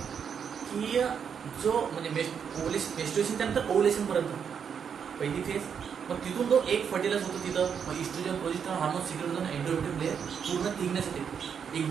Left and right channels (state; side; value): quieter; left; 7.2 dB